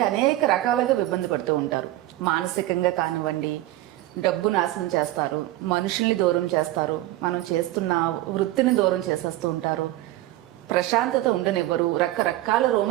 అనేక రకాలుగా ఇబ్బంది పడుతూ ఉంటారు. మానసికంగా కానివ్వండి, డబ్బు నాశనం చేస్తారు, మనుషుల్ని దూరం చేస్తారు, మనం చేస్తున్న వృత్తిని దూరం చేసేస్తూ ఉంటారు, ప్రశాంతత ఉండనివ్వరు, రకరకాల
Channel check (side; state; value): left; quieter; 16.0 dB